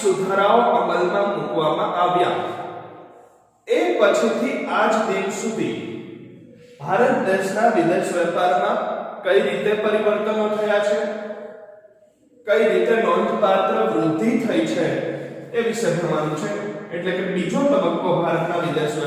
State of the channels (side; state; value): both; identical; correlation 1.00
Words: અમલમાં મૂકવામાં આવ્યા એ પછીથી આજ દિન સુધી ભારત દેશના વિદેશ વેપારમાં કઈ રીતે પરિવર્તનો થયા છે, કઈ રીતે નોંધપાત્ર વૃદ્ધિ થઈ છે એ વિશે ભણવાનું છે. એટલે કે બીજો તબક્કો ભારતના વિદેશ